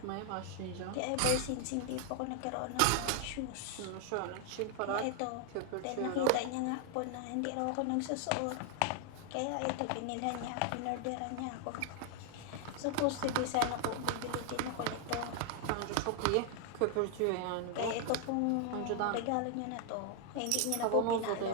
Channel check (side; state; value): both; different; correlation 0.00